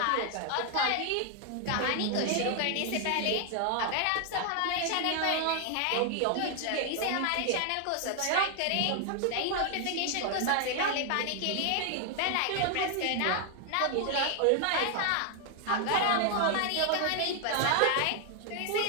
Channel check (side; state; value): both; different; correlation 0.00